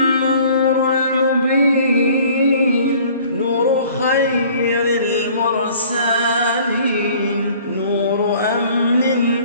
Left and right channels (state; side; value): inverted; both; correlation -0.52